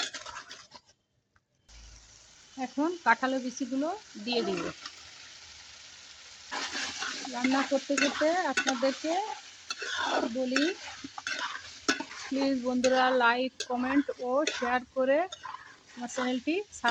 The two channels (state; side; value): identical; both; correlation 1.00